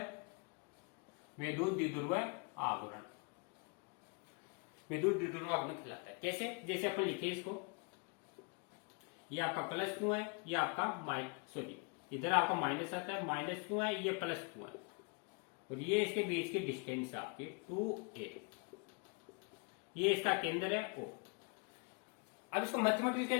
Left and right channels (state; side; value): quieter; right; 33.5 dB